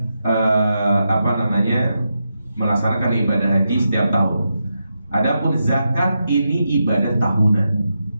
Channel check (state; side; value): inverted; both; correlation -0.86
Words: melaksanakan ibadah haji setiap tahun. Adapun zakat ini ibadah tahunan.